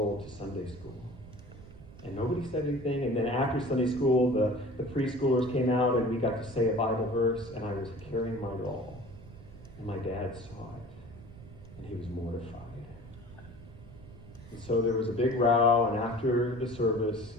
to Sunday school. And nobody said anything. And then after Sunday school, the preschoolers came out, and we got to say a Bible verse, and I was carrying my doll. And my dad saw it. And he was mortified. And so there was a big row, and after the service,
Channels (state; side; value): noise; right; rumble, 18 dB below the sound